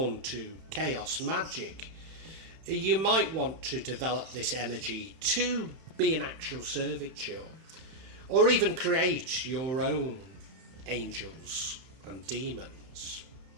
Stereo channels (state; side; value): late; left; 31 ms